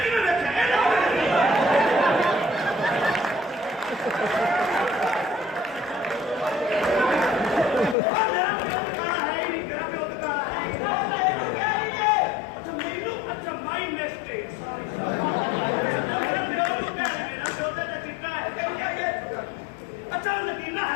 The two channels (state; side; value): drops out; right; at 8.0 s